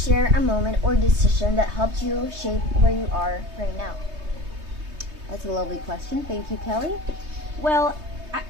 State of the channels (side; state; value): left; late; 3.2 ms